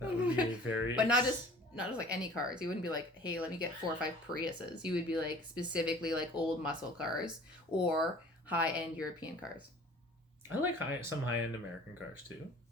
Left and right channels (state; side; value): normal; both; correlation 0.48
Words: would be a very. But not just like any cars. You wouldn't be like, hey, let me get 4 or 5 Priuses. You would be like specifically like old muscle cars or high end European cars. I like some high end American cars too.